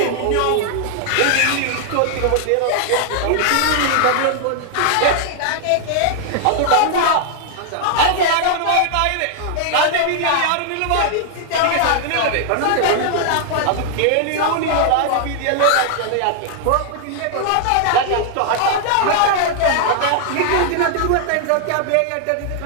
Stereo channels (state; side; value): different; both; correlation 0.00